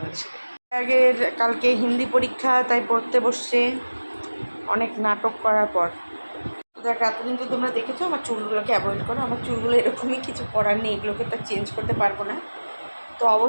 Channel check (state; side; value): inverted; both; correlation -1.00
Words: পারি। আগের কালকে হিন্দি পরীক্ষা, তাই পড়তে বসছে, অনেক নাটক করার পর দেখ এতদিন তো তোমরা দেখেছো আমার চুলগুলোকে অ্যাভয়েড করো, আমার চুলগুলো এরকমই, কিছু করার নেই, এগুলোকে তো চেঞ্জ করতে পারবো না। তো